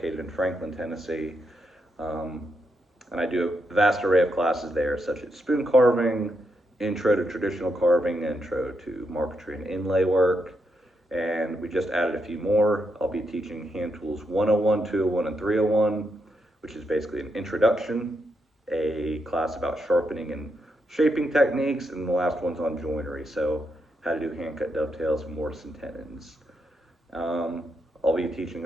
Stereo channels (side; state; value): both; normal; correlation 0.81